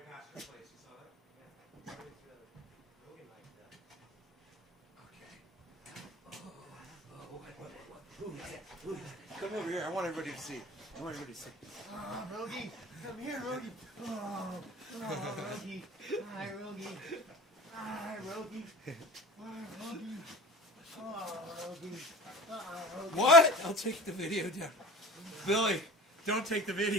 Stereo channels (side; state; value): both; normal; correlation 0.39